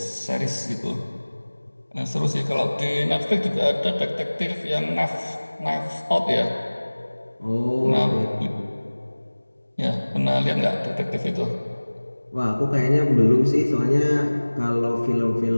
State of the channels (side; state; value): both; inverted; correlation -1.00